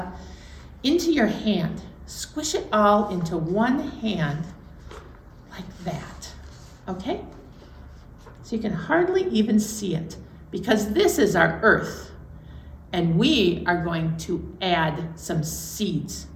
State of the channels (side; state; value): both; identical; correlation 1.00